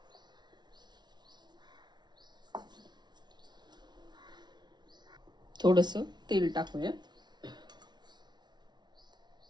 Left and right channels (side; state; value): left; late; 0.20 ms